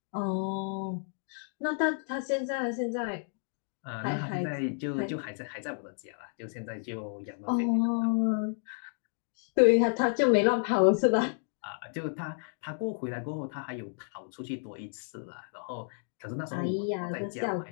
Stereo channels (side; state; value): right; silent; 57 dB below the other